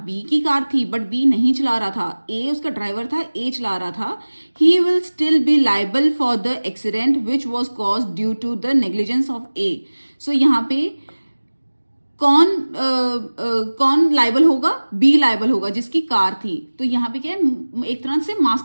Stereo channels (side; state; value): both; inverted; correlation -1.00